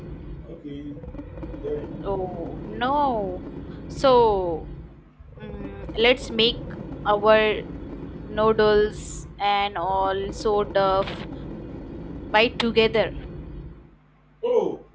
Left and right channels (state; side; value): identical; both; correlation 1.00